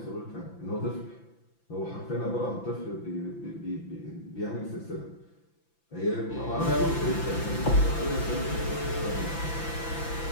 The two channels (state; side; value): late; right; 5.9 ms